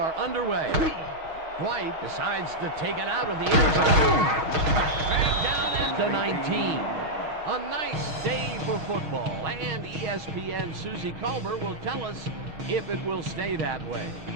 underway. White decides to take it out of the end zone. Dragged down at the 19. A nice day for football, and ESPN Susie Culver will tell us if it will stay that way.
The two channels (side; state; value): left; late; 6.4 ms